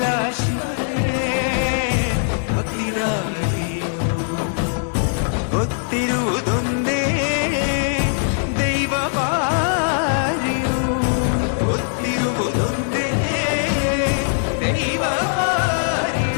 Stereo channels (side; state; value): right; silent; digital silence